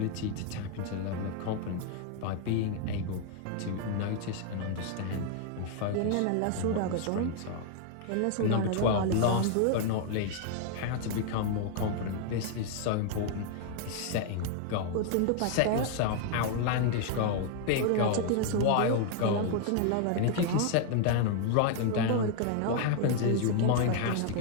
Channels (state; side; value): different; both; correlation 0.00